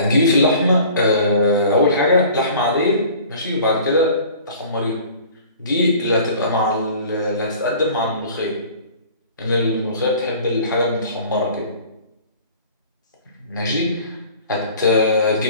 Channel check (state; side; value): inverted; both; correlation -0.47